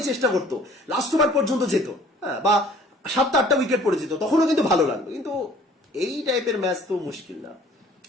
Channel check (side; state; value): both; normal; correlation 0.53